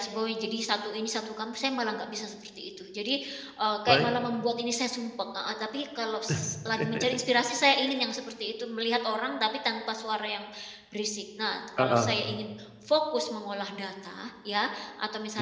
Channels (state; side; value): identical; both; correlation 1.00